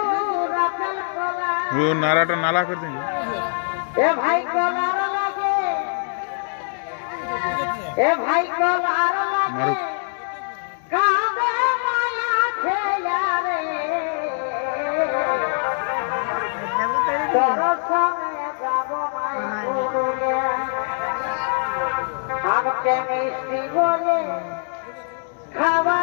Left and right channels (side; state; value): right; silent; digital silence